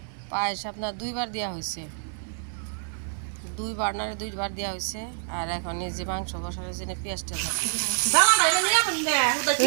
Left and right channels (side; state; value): left; silent; 57 dB below the other